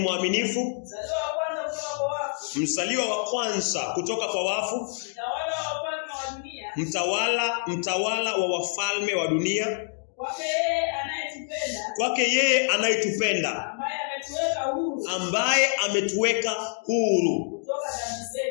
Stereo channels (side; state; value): right; silent; digital silence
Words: mzaliwa wa kwanza kutoka kwa wafu, mtawala wa wafalme wa dunia, kwake yeye anayetupenda, ambaye ametuweka huru